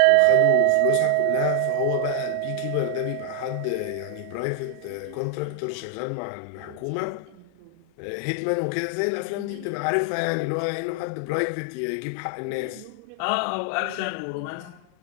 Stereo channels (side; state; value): both; different; correlation 0.00